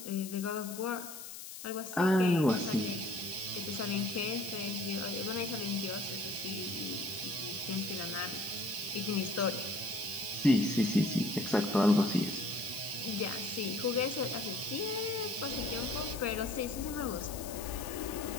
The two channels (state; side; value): noise; left; hiss, 11 dB below the sound